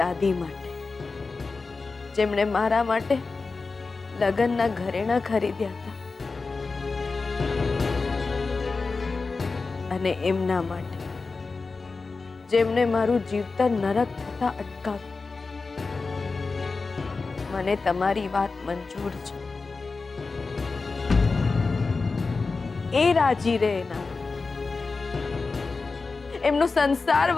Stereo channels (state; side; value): quieter; right; 4.1 dB